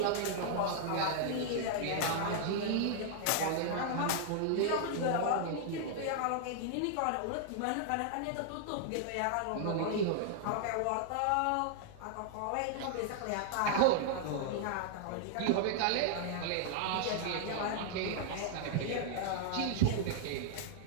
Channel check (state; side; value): different; both; correlation -0.01